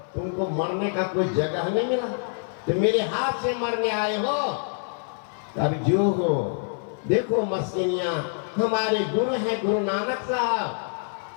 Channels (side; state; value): right; silent; 57 dB below the other